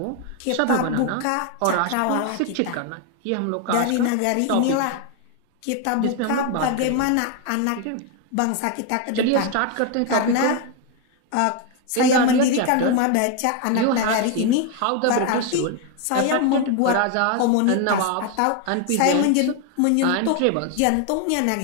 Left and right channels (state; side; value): different; both; correlation 0.01